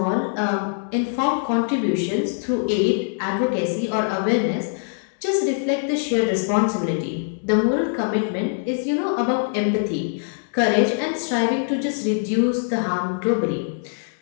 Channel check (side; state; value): right; silent; 64 dB below the other